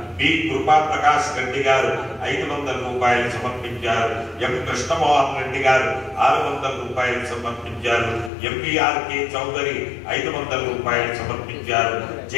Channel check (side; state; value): right; drops out; at 8.3 s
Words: బి కృపా ప్రకాష్ రెడ్డి గారు 500 రూపాయలు సమర్పించారు. ఎం కృష్ణమోహన్ రెడ్డి గారు 600 రూపాయలు సమర్పించారు. ఎంబీఆర్కే చౌదరి 500 రూపాయలు సమర్పించారు.